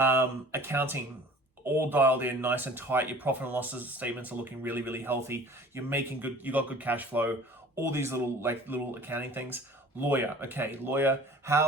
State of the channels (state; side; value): normal; both; correlation 0.46